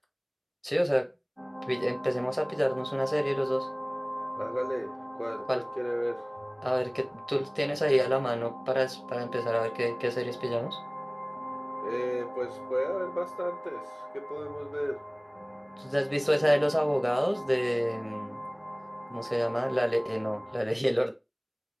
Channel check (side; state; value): both; identical; correlation 1.00